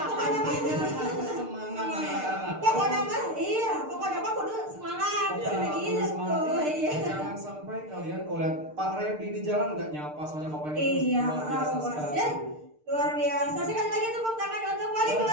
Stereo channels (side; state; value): left; late; 6.6 ms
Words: mah Semangat anak-anak. pokoknya mah iya, pokoknya mah kudu semangat. Iya, Kayak kudu gitu. semangat. Iya. Jangan sampai kalian kalau lihat Pak Reddy di jalan nggak nyapa soalnya bapaknya Iya, luar biasa awas sekali. ya. Luar biasa. Sekali lagi tepuk tangan untuk wali